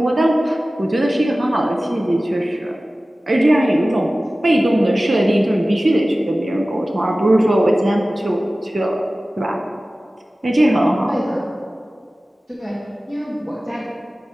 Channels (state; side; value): normal; both; correlation 0.97